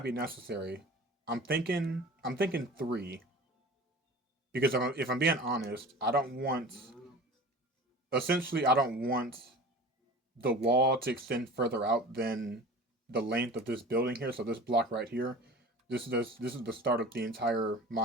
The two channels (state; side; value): normal; both; correlation 0.39